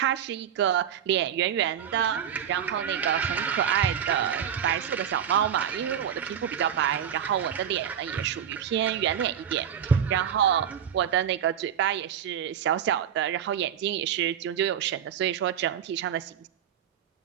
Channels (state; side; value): quieter; left; 9.0 dB